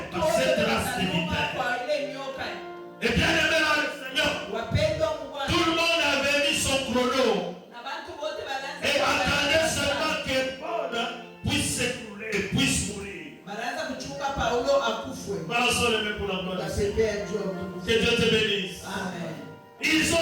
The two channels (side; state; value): both; identical; correlation 1.00